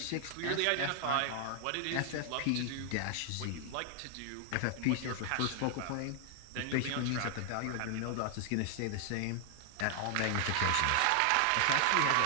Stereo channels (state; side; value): different; both; correlation 0.00